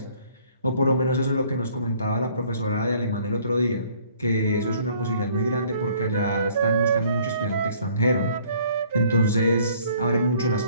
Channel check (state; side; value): inverted; both; correlation -0.59